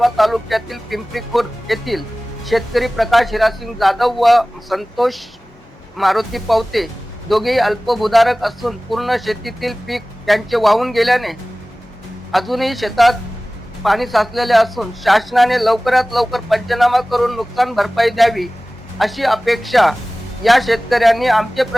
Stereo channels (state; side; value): normal; both; correlation 0.98